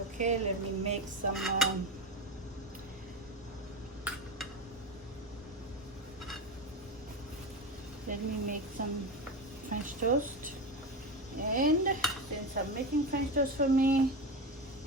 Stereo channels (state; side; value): normal; both; correlation 0.20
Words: okay, let me make some French toast. And since I'm making French toast for me,